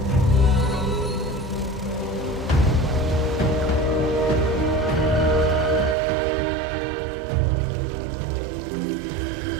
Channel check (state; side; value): drops out; left; at 6.0 s